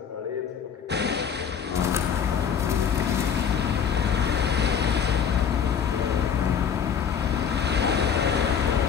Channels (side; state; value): right; quieter; 7.4 dB